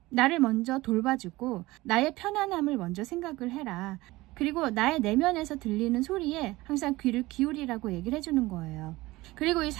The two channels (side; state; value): left; quieter; 19.6 dB